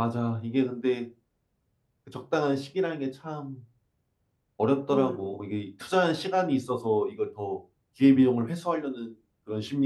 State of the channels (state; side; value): identical; both; correlation 1.00